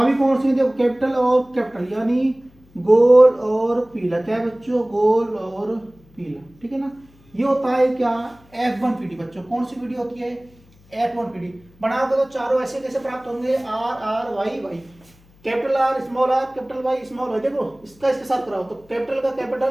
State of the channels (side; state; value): left; noise; hum, 29 dB below the sound